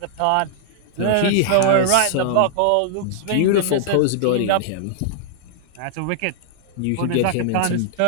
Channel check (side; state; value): both; different; correlation -0.01